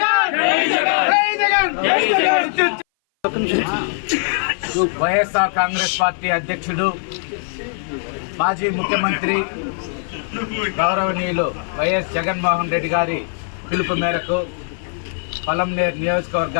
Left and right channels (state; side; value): silent; right; 59 dB below the other